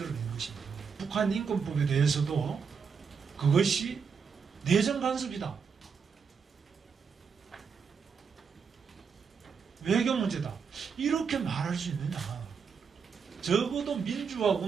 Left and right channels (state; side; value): quieter; left; 6.1 dB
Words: 것입니다. 북한 인권법에 대해서도 그것이 내정 간섭이다, 외교 문제다, 이렇게 말할 수 있느냐. 적어도 민주화